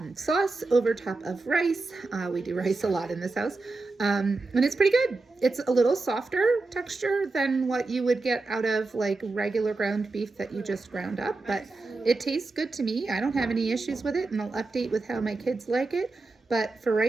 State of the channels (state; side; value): quieter; left; 3.5 dB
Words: sauce over top of rice. We do rice a lot in this house, and it's pretty good. It's a little softer texture than what you would get out of like regular ground beef that you just ground up, but it tastes good to me. I don't have any issues with it, and I'll update with how my kids like it. But for